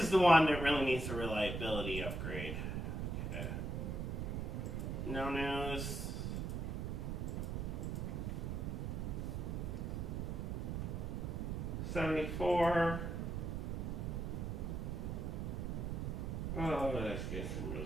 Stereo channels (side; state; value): right; noise; rumble, 2 dB below the sound